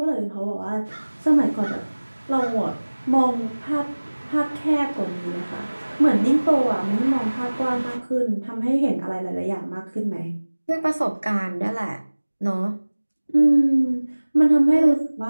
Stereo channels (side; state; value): both; inverted; correlation -1.00